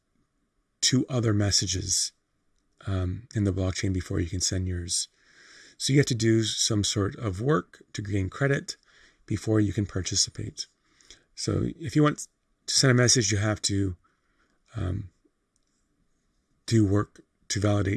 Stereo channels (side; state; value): both; identical; correlation 1.00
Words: 2 other messages in the blockchain before you can send yours. So you have to do some sort of work to gain credit before you can participate. So if you want to send a message, you have to do work to